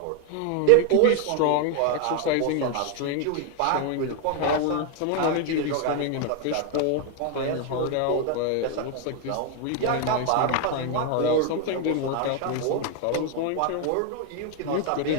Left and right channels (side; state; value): both; different; correlation 0.01